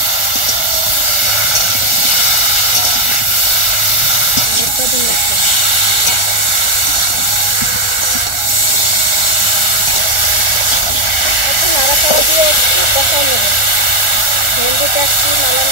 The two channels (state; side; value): late; right; 1.4 ms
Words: নাড়াচাড়া দিয়ে একটু কষাই নেব। ভেন্ডিটা একটু নালা